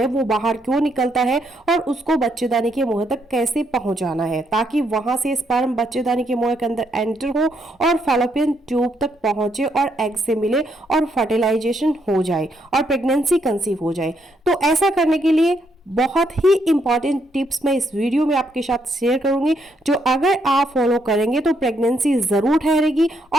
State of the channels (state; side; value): normal; both; correlation 0.75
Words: वो बाहर क्यों निकलता है और उसको बच्चेदानी के मुंह तक कैसे पहुंचाना है ताकि वहां से स्पर्म बच्चेदानी के मुंह के अंदर एंटर हो और फैलोपियन ट्यूब तक पहुंचे और एग से मिले और फर्टिलाइजेशन हो जाए और प्रेगनेंसी कंसीव हो जाए। तो ऐसा करने के लिए बहुत ही इंपॉर्टेंट टिप्स मैं इस वीडियो में आपके साथ शेयर करूंगी, जो अगर आप फॉलो करेंगे तो प्रेगनेंसी जरूर ठहरेगी